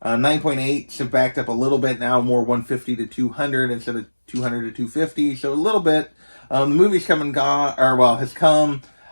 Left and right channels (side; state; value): both; inverted; correlation -1.00